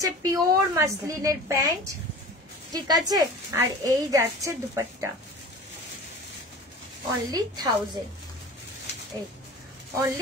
পিওর মাসলিনের প্যান্ট, ঠিক আছে, আর এই যাচ্ছে দুপাট্টা, অনলি 1000, এই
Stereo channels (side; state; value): both; normal; correlation 0.38